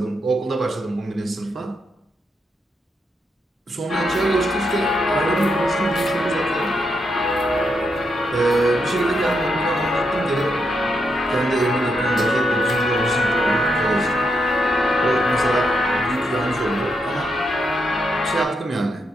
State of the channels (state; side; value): normal; both; correlation 0.81